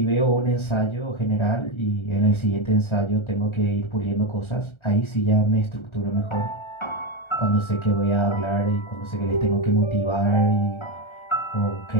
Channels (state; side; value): late; right; 1.3 ms